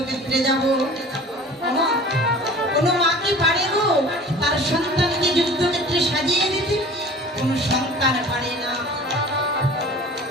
যাব। কোনো মা কি পারে গো তার সন্তানকে যুদ্ধক্ষেত্রে সাজিয়ে দিতে? কোনো সন্তান পারে না,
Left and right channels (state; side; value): normal; both; correlation 0.43